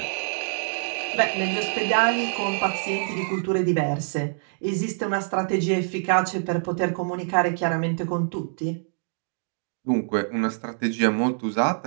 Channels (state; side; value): silent; left; digital silence